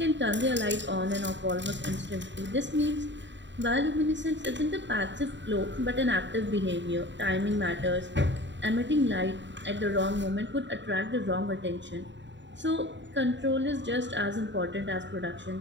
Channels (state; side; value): late; left; 0.53 ms